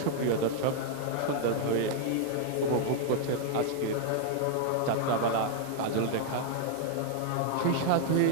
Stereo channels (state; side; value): different; both; correlation -0.01